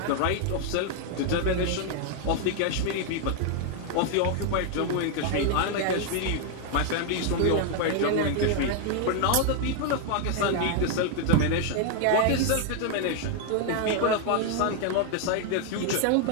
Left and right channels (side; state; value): both; different; correlation 0.00